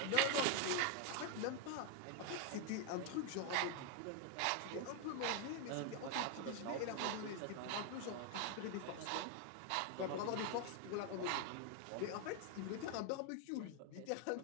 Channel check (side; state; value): both; different; correlation 0.01